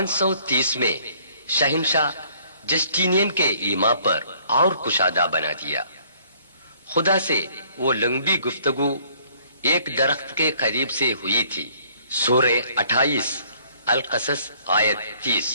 میں شہنشاہ جسٹینین کے ایما پر اور کشادہ بنا دیا. خدا سے وہ لمبی گفتگو ایک درخت کے قریب سے ہوئی تھی. سورہ 28 القصص آیت 30.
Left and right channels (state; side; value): inverted; both; correlation -0.60